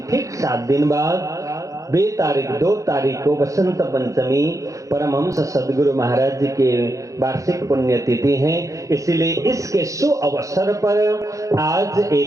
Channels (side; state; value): left; late; 0.16 ms